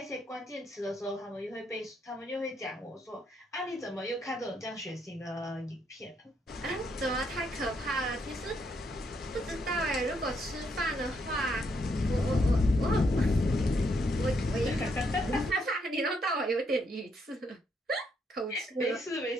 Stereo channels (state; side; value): normal; both; correlation 0.75